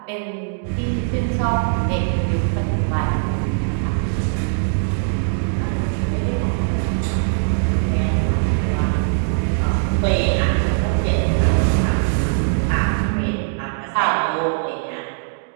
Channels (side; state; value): left; silent; digital silence